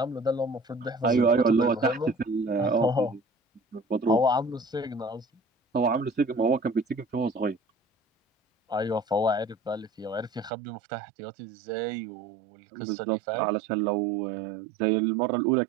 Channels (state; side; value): drops out; left; at 10.5 s